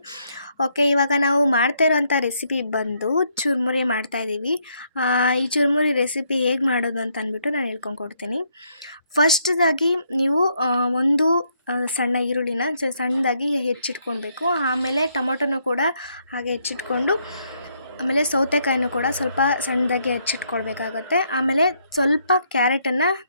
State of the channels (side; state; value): both; inverted; correlation -0.73